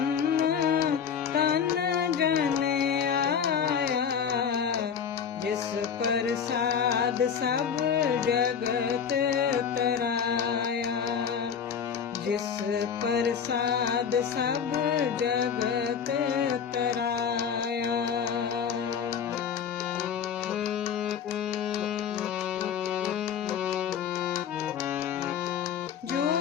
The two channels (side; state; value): right; quieter; 7.4 dB